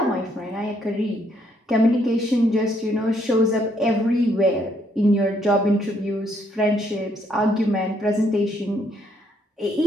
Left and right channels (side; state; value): both; normal; correlation 0.71